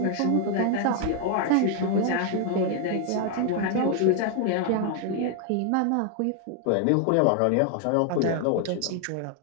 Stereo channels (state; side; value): different; both; correlation 0.00